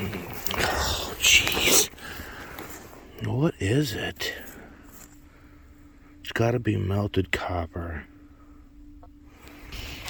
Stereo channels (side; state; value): both; identical; correlation 1.00